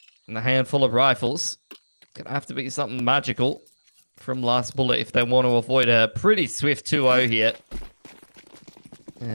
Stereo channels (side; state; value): both; inverted; correlation -1.00